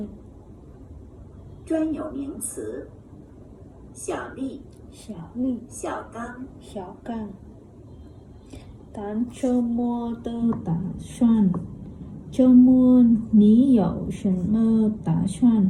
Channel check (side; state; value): both; identical; correlation 1.00